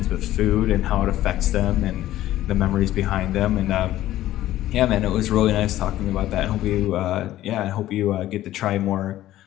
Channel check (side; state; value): right; quieter; 14.2 dB